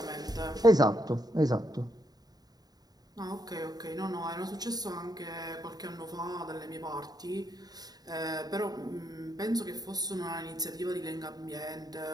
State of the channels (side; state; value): left; late; 0.19 ms